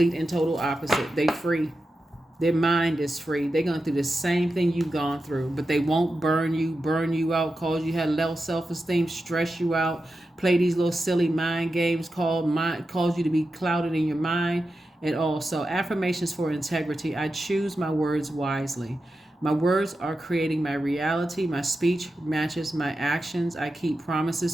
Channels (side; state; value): both; normal; correlation 0.90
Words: and total opposite. They free. Their mind is free. They're going through the same thing you've gone through, but they won't burn you out, cause you had low self-esteem, stress you out, play these little silly mind games, cause you to be clouded in your mind and all. So affirmations for integrity. I choose my words wisely. My words are creating my reality. My speech matches my actions. I keep